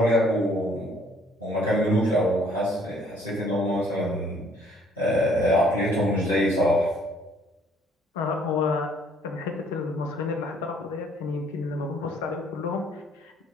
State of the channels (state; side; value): normal; both; correlation 0.62